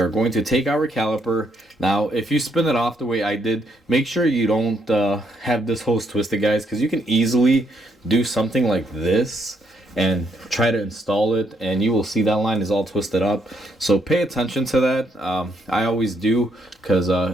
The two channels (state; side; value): normal; both; correlation 0.74